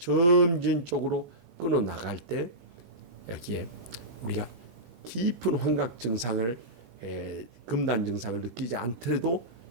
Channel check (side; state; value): left; late; 17 ms